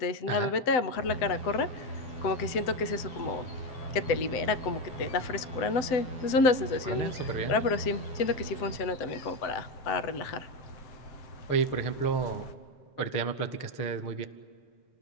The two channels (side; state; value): right; late; 7.9 ms